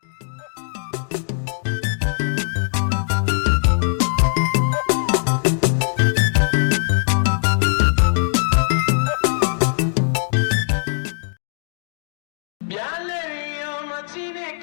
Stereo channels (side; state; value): right; silent; digital silence